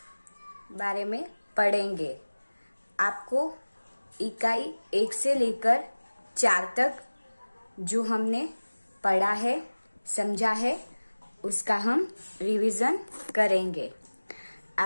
पढ़ेंगे। आपको इकाई 1 से लेकर 4 तक जो हमने पढ़ा है, समझा है, उसका हम रिवीजन करेंगे।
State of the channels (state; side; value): inverted; both; correlation -1.00